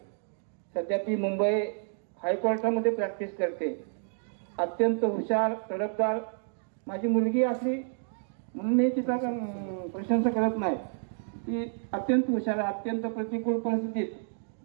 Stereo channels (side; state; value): left; silent; digital silence